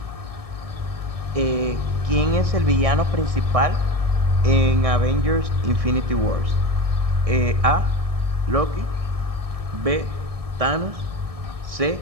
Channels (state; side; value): late; left; 1.6 ms